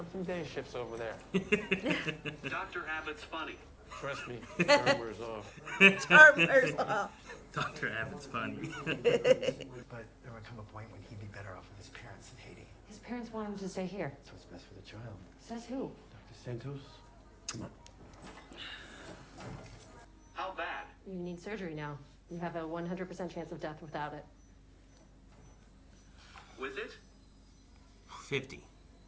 some day shifts over there. Dr. Abbott's funny. Trust me, charm wears off. Charm wears off. Dr. Abbott's funny. But there would come a point when he'd be better off with his parents in Haiti. His parents want him to stay here. That's what's best for the child. Says who? Dr. Santos? Come on. How bad? You need surgery now. You have a 100% chance of death without it. With it? 50.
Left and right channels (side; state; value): both; identical; correlation 1.00